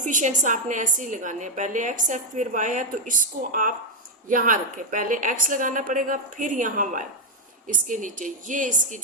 आपने ऐसे ही लगाने हैं, पहले x है फिर y है, तो इसको आप यहाँ रखें, पहले x लगाना पड़ेगा फिर यहाँ y इसके नीचे, ये इसकी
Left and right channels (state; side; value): normal; both; correlation 0.01